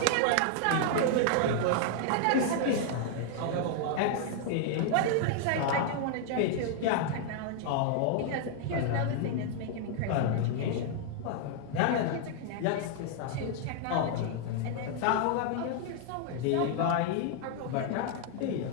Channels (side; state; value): both; different; correlation 0.00